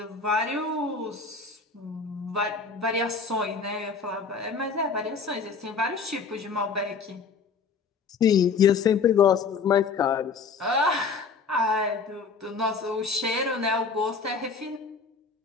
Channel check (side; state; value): right; quieter; 5.0 dB